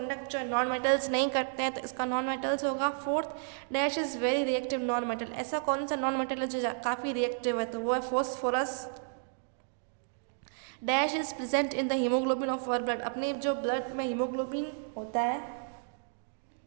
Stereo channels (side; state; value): left; silent; digital silence